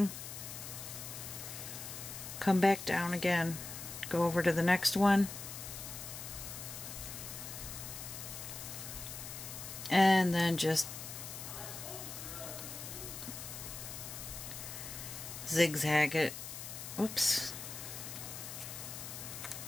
come back down again. Go over to the next one. And then just zigzag it. Whoops.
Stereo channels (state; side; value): noise; left; hiss, 9 dB below the sound